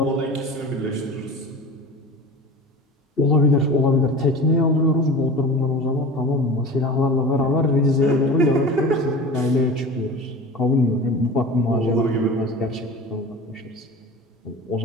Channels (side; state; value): both; normal; correlation 0.35